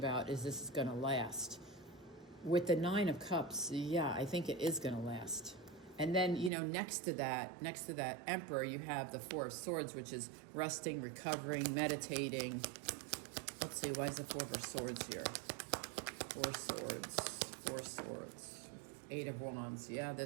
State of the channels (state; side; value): drops out; left; at 6.5 s